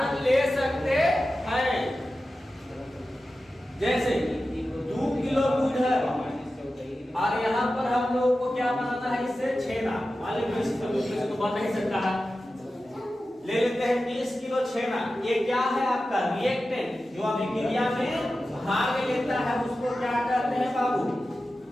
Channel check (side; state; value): both; normal; correlation 0.93